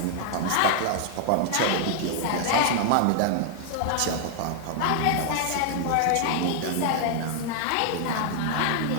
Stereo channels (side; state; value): both; different; correlation 0.00